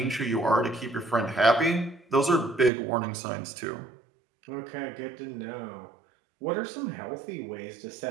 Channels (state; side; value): drops out; left; at 2.7 s